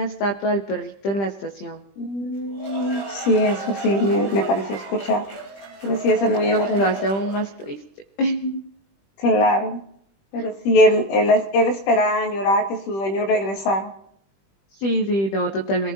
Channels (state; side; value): late; right; 20 ms